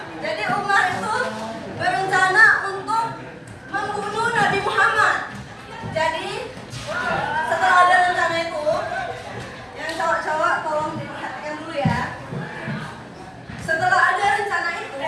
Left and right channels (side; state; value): both; identical; correlation 1.00